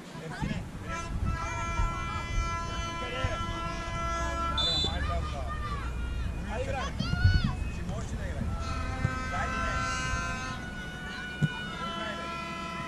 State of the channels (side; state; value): both; identical; correlation 1.00